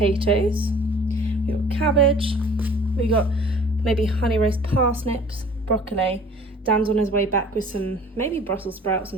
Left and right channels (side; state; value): both; normal; correlation 0.49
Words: We got cabbage, we got maybe honey roast parsnips, broccoli. Dan's on his way back with some maybe Brussels sprouts,